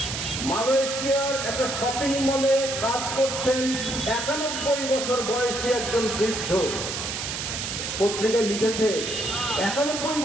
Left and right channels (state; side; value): noise; right; hiss, 4 dB below the sound